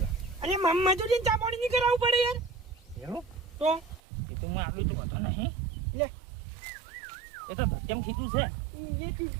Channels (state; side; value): drops out; left; at 4.0 s